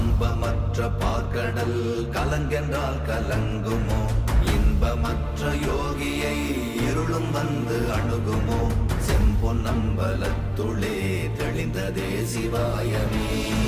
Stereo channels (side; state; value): both; identical; correlation 1.00